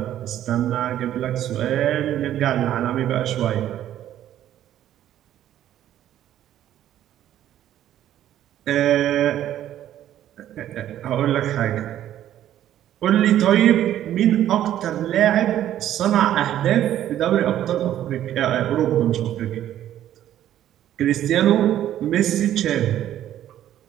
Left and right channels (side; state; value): left; quieter; 11.8 dB